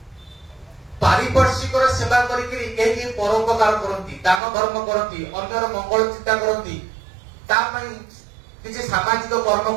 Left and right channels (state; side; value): drops out; left; at 4.4 s